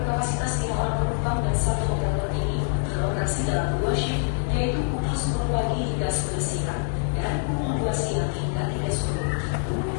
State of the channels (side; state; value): right; silent; digital silence